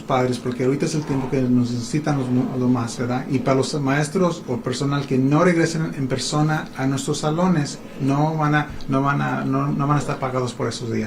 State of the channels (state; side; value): identical; both; correlation 1.00